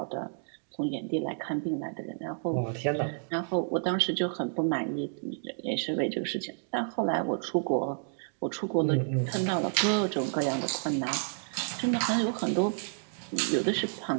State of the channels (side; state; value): left; silent; digital silence